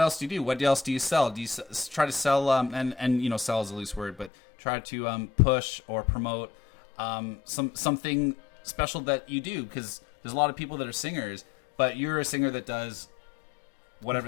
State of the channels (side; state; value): right; drops out; at 4.3 s